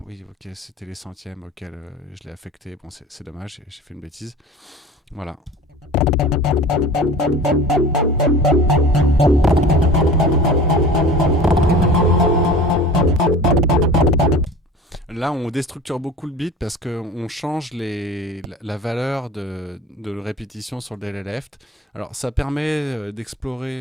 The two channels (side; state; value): both; normal; correlation 0.39